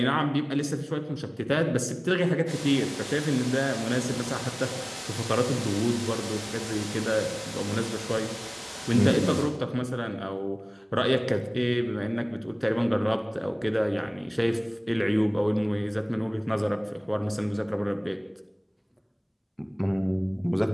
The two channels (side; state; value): both; identical; correlation 1.00